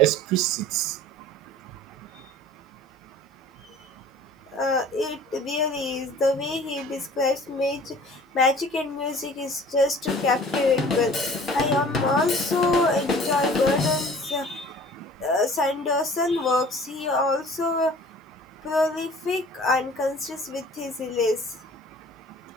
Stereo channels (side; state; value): both; normal; correlation 0.47